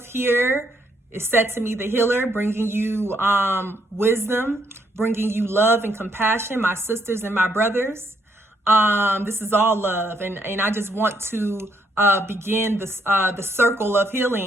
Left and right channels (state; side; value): normal; both; correlation 0.72